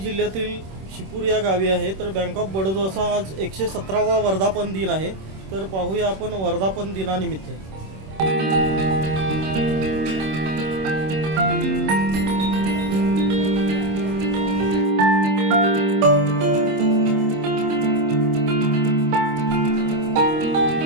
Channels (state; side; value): late; left; 26 ms